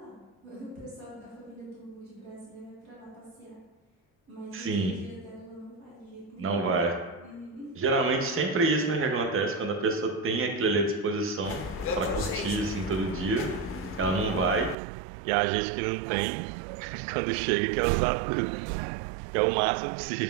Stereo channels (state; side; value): drops out; left; at 14.8 s